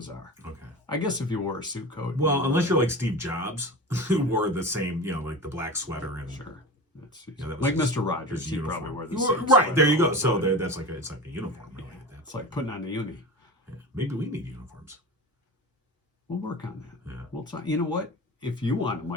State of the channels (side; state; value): both; normal; correlation 0.31